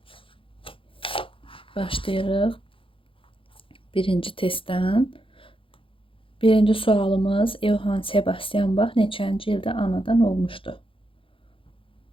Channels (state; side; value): late; right; 0.26 ms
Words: Başlayırıq. Birinci testdən. Birinci sualımız Johann Sebastian Bach neçənci ildə anadan olmuşdu?